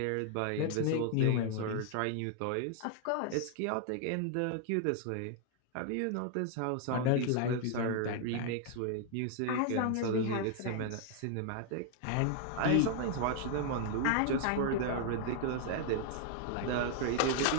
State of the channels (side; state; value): both; different; correlation 0.00